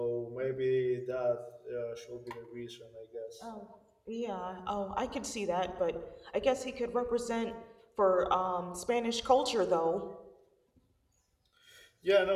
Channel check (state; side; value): identical; both; correlation 1.00